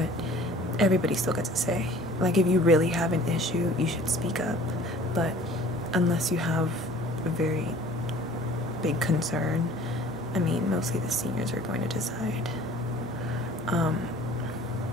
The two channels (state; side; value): normal; both; correlation 0.49